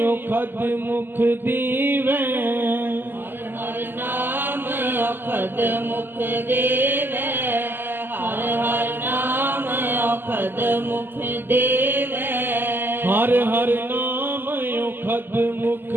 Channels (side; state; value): left; late; 0.095 ms